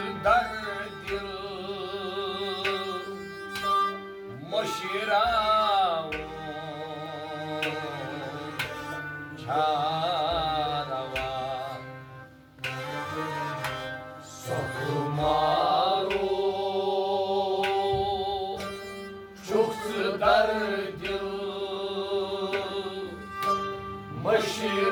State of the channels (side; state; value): both; identical; correlation 1.00